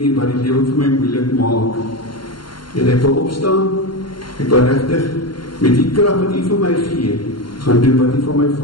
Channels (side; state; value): right; late; 0.72 ms